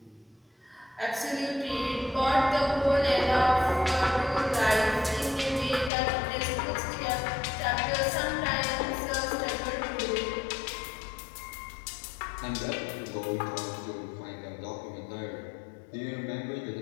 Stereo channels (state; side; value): drops out; right; at 5.9 s